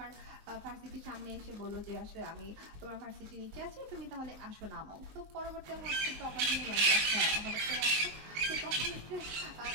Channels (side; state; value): left; late; 19 ms